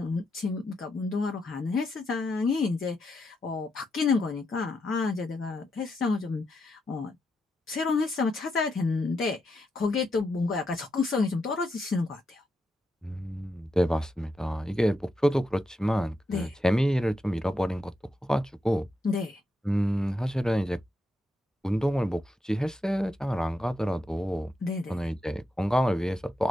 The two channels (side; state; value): both; normal; correlation 0.84